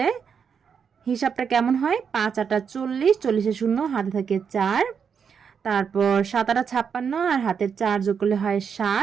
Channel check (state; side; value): quieter; left; 6.8 dB